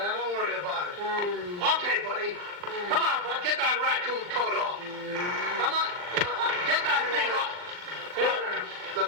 worry about it. Okay, buddy. Come on, bud. Get that raccoon coat off. Come on. Get that thing off.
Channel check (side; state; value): left; late; 39 ms